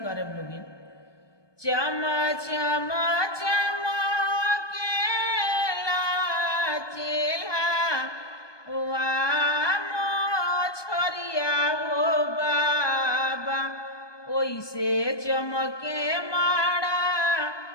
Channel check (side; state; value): right; late; 1.2 ms